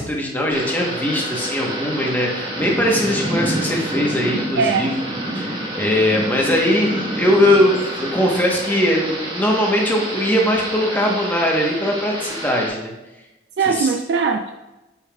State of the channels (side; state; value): both; normal; correlation 0.49